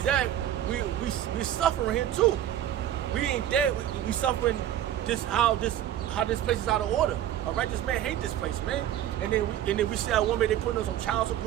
that, we suffering here too. We ain't dead. We suffering just how this place is out of order. A righteous man hate this place, man. And then we see our women, they putting us on child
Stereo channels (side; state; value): left; quieter; 11.6 dB